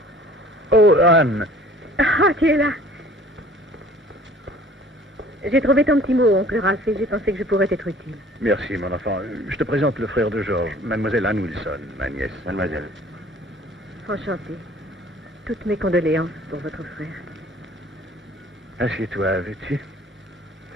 Oh, Anne! Ah, tu es là. J'ai trouvé ton petit mot, oncle Ralph, et j'ai pensé que je pourrais être utile. Merci, mon enfant. Je te présente le frère de Georges, mademoiselle Anne Wilson, ma nièce. Mademoiselle. Enchantée. Toutes mes condoléances pour votre frère. Assieds-toi, veux-tu?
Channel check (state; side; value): normal; both; correlation 0.50